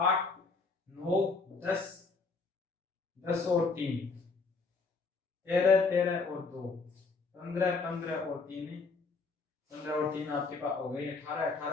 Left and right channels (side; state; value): right; quieter; 4.3 dB